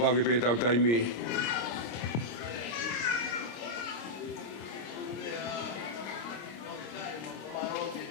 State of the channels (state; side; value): late; right; 26 ms